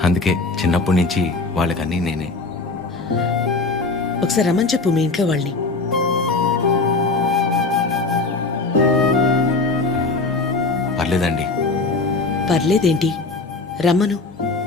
అందుకే చిన్నప్పటి నుంచి వాళ్ళకన్నీ నేనే. ఒకసారి రమ్మని చెప్పు మీ ఇంట్లో వాళ్ళని. పర్లేదండి. పర్లేదేంటి, రమ్మను.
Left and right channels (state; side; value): quieter; right; 3.6 dB